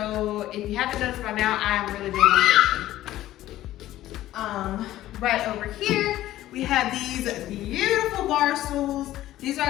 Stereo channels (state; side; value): quieter; right; 14.4 dB